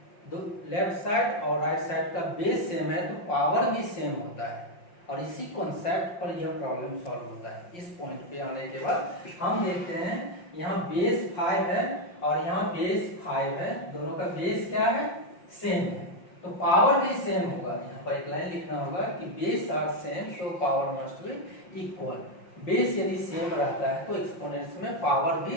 लेफ्ट साइड और राइट साइड का बेस सेम है तो पावर भी सेम होता है। और इसी कॉन्सेप्ट पर यह प्रॉब्लम सॉल्व होता है। इस पॉइंट पे आने के बाद हम देखते हैं यहाँ बेस 5 है और यहाँ बेस 5 है, दोनों का बेस क्या है, सेम है, तो पावर भी सेम होगा। यहाँ पर एक लाइन लिखना होगा कि base are same so power must be equal. Base यदि सेम रहता है तो एक्सपोनेंट्स में पावर भी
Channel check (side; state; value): right; late; 5.7 ms